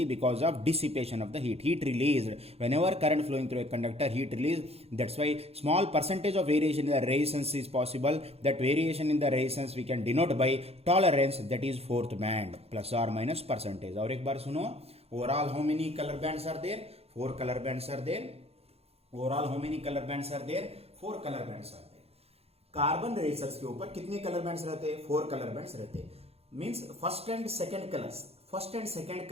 because of dissipation of the heat released. Whenever current flowing through a conductor, heat released. That's why small percentage of variation in the resistance is possible. That variation in the resistance we can denote by tolerance, that is fourth band, plus or minus percentage. और एक बार सुनो, overall how many color bands are there? 4 color bands are there. Overall how many color bands are there? 4 colour bands आते हैं। Carbon razor's के ऊपर कितने colour bands रहते हैं? 4 कलर बैंड्स रहते हैं। Means first and second colour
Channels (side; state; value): left; late; 0.29 ms